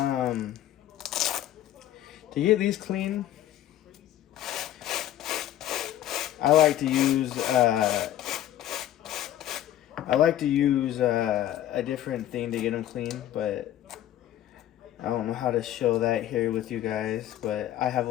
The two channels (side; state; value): right; quieter; 12.5 dB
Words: get these clean, I like to use a different thing to get them clean, but I don't know how to show that here with you guys. But I have